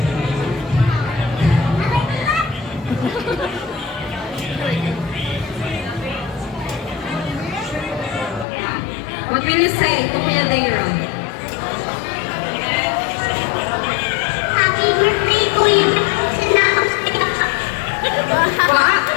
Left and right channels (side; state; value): right; drops out; at 8.5 s